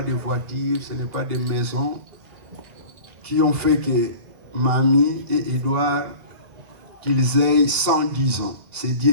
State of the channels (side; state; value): left; late; 1.9 ms